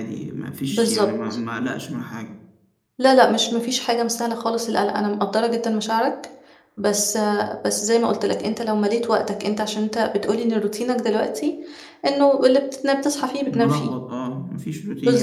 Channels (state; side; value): identical; both; correlation 1.00